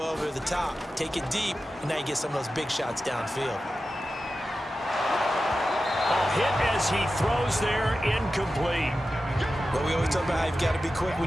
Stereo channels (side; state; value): both; normal; correlation 0.93